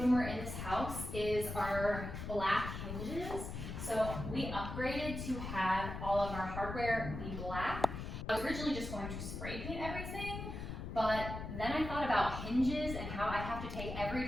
we're in this house is our black hinges. So we upgraded to have all of our hardware be black. I was originally just going to spray paint everything, but then I thought about hinges and how I have take every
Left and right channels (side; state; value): left; noise; rumble, 6 dB below the sound